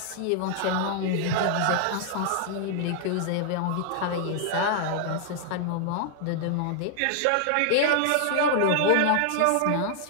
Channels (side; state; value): both; different; correlation 0.00